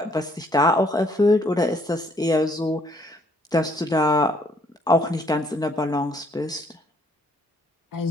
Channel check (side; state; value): both; normal; correlation 0.66